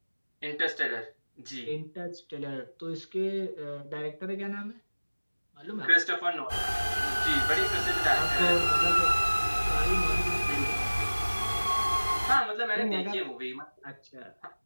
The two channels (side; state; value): both; inverted; correlation -1.00